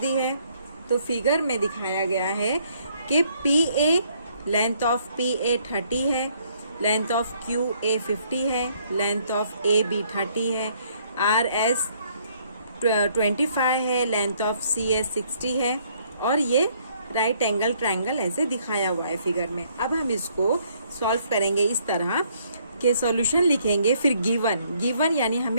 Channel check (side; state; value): both; inverted; correlation -0.66